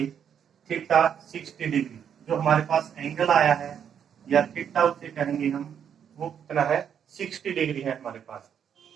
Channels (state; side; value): quieter; left; 8.3 dB